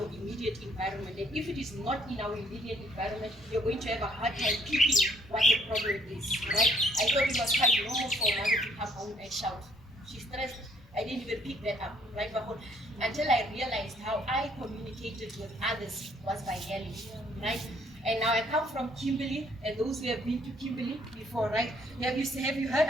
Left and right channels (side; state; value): both; normal; correlation 0.65